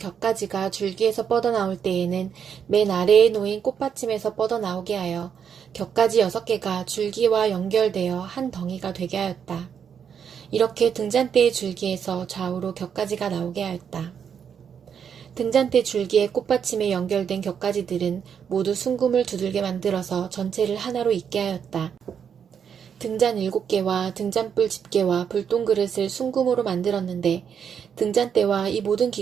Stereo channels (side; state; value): left; quieter; 7.6 dB